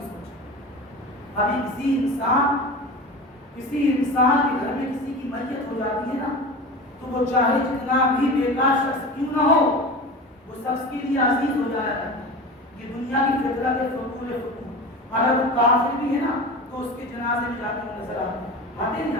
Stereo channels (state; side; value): normal; both; correlation 0.31